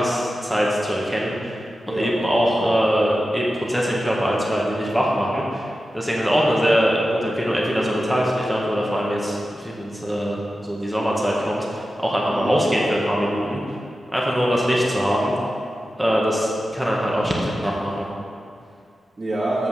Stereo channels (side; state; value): both; normal; correlation 0.93